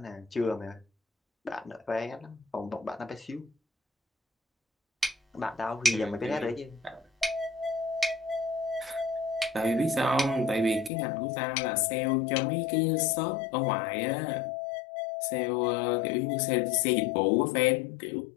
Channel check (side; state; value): right; drops out; at 10.9 s